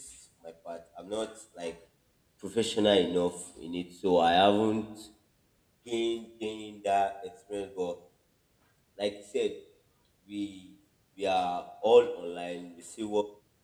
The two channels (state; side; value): identical; both; correlation 1.00